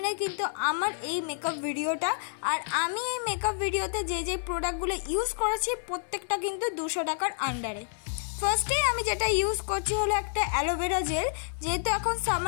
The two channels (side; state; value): right; silent; digital silence